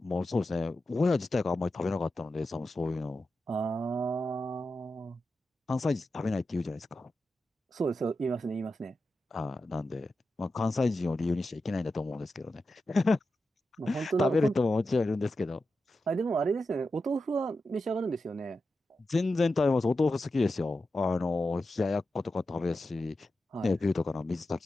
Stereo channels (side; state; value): both; normal; correlation 0.90